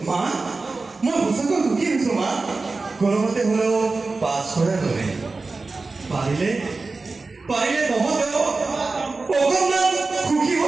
মা, মই সঁচাকৈ সুখী হৈছোঁ মা। কোনোমতে হ'লেও পাছ কৰাৰ বাবে পাৰিলে তহঁতেও অকণমান সুখী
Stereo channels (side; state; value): left; quieter; 3.8 dB